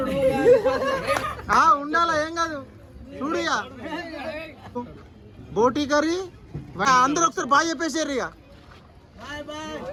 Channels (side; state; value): both; identical; correlation 1.00